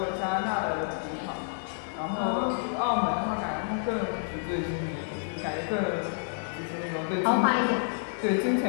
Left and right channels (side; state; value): right; silent; digital silence